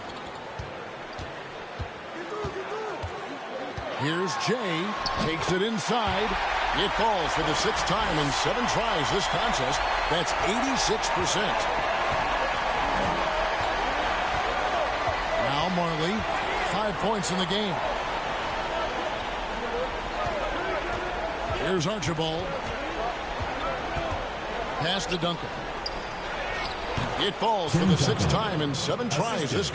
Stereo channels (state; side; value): identical; both; correlation 1.00